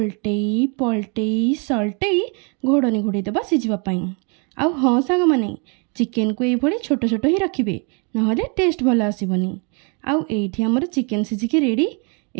पलटेई सल्टेई घोड़नी घोड़े देवा सीझापी। आउ हाँ सांग माने चिकेन को ये छोट छोट ही रखिए ना टेस्ट भल आसबनी। आउ एठी हमर चिकेन सीझिकी रेडी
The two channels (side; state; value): left; quieter; 34.8 dB